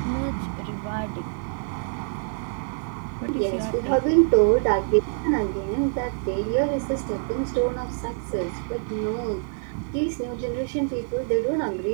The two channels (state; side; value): silent; left; 61 dB below the other